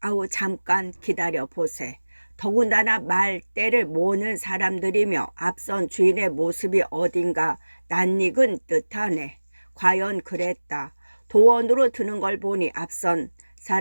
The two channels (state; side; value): inverted; both; correlation -1.00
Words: 아우 잠깐 기다려 보세. 더군다나 말대를 모으는 사람들이며 앞선 주인의 모습이 어딘가 낯익은 듯하네. 과연 그랬다. 도원으로 드는 걸 보니 앞선